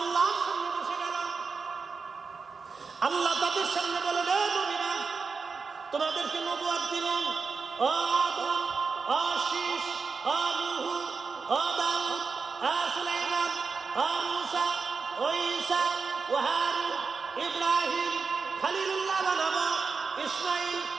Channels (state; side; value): quieter; left; 4.9 dB